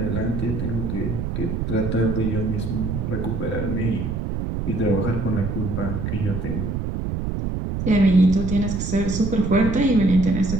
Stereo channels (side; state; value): right; noise; rumble, 3 dB below the sound